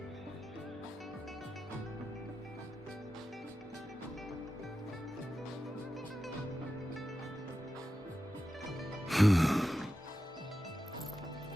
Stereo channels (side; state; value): both; normal; correlation 0.92